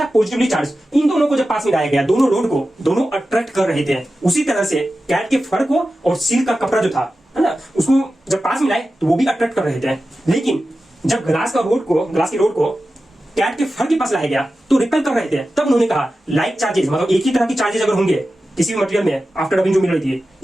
पॉजिटिवली चार्ज। इन दोनों को जब पास में लाया गया, दोनों रोड को दोनों अट्रैक्ट कर रहे थे। उसी तरह से कैट के फर को और सिल्क का कपड़ा जो था है ना, उसको जब पास में लाए तो वो भी अट्रैक्ट कर रहे थे। लेकिन जब ग्लास की रोड को कैट के फर के पास लाया गया तो रिपेल कर रहे थे। तब उन्होंने कहा लाइक चार्जेस, मतलब एक ही तरह की चार्जेस अगर होंगे किसी भी मटेरियल में, आफ्टर रबिंग जो मिल रही थी,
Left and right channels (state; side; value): normal; both; correlation 0.93